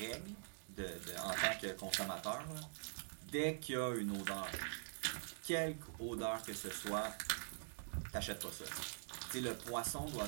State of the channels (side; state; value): left; silent; digital silence